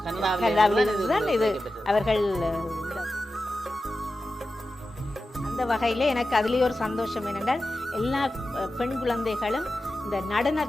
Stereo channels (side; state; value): both; normal; correlation 0.93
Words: கனடாவில் இது அவர்கள். அந்த வகையில் எனக்கு அதுலேயே ஒரு சந்தோஷம் என்னென்றால் எல்லா பெண் குழந்தைகளும் இந்த